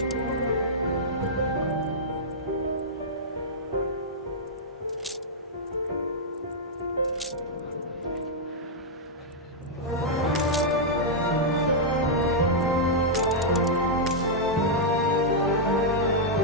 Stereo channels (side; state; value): both; normal; correlation -0.07